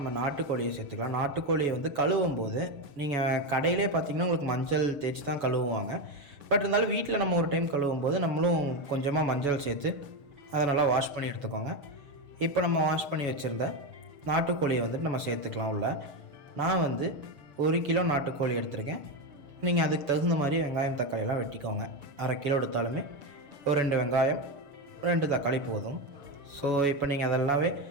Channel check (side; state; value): left; late; 7.1 ms